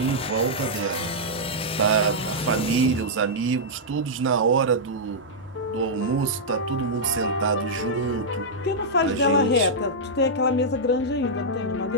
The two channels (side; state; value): both; normal; correlation -0.08